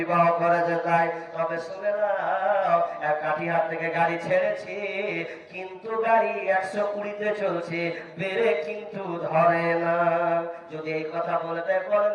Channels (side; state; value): both; identical; correlation 1.00